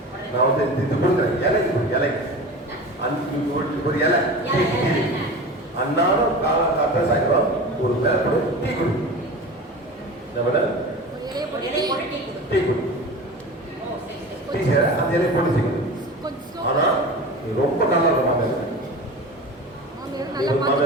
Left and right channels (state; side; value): normal; both; correlation 0.33